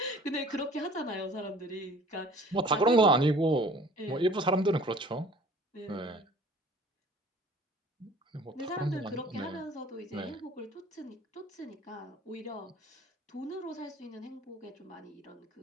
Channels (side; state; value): both; normal; correlation 0.49